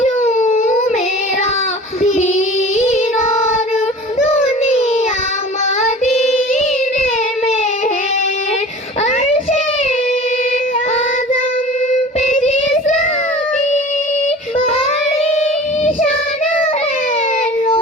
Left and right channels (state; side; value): normal; both; correlation 0.40